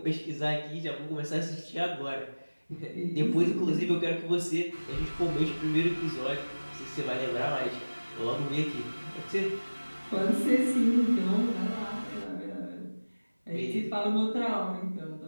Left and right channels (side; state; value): both; inverted; correlation -1.00